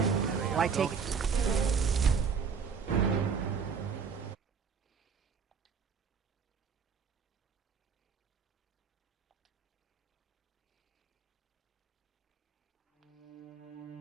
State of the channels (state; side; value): quieter; left; 6.1 dB